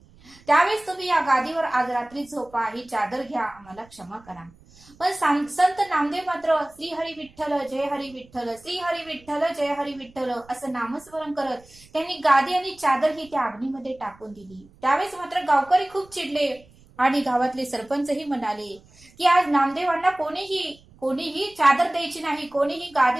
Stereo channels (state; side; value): noise; right; rumble, 26 dB below the sound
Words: त्यावेळेस तुम्ही या गादीवर आज रात्री झोपा, ही चादर घ्या, आम्हाला क्षमा करा. पण संत नामदेव मात्र श्री हरी विठ्ठल जय हरी विठ्ठल, श्री हरी विठ्ठल जय हरी विठ्ठल असं नामस्मरण करत त्यांनी गादी आणि चादर ही त्या अग्नीमध्ये टाकून दिली. त्यावेळेस मात्र गावकरी खूप चिडले आणि गावातले सरपंचही म्हणाले की आज नामदेवांना कोणीही चादर द्यायची नाही, कोणीही गादी